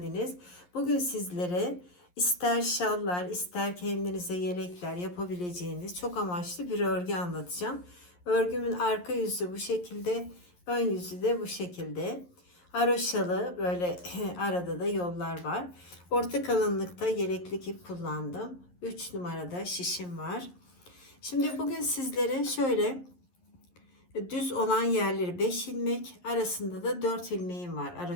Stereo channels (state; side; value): late; right; 11 ms